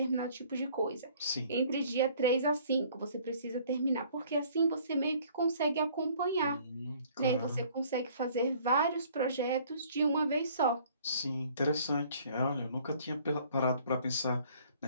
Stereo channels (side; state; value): both; inverted; correlation -0.56